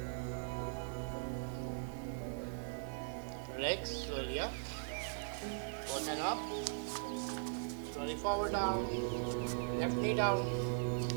relax, slowly up, both hand up, slowly forward down, left knee down,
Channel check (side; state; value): left; silent; digital silence